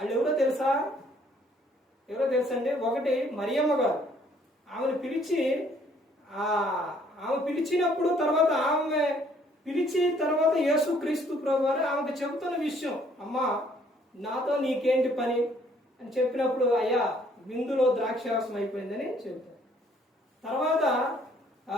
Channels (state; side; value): normal; both; correlation 0.63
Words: ఎవరో తెలుసా? ఎవరో తెలుసండి? ఒకటి మరియమ్మ గారు. ఆమెను పిలిచి ఆమె పిలిచినప్పుడు తర్వాత ఆమె పిలిచి తర్వాత యేసుక్రీస్తు ప్రభువారు ఆమెకు చెబుతున్న విషయం, అమ్మా నాతో నీకేంటి పని అని చెప్పినప్పుడు, అయ్యా విందులో ద్రాక్షారసం అయిపోయిందని చెబుతారు. తర్వాత